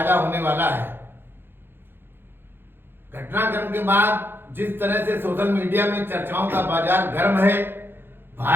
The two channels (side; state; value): left; late; 0.10 ms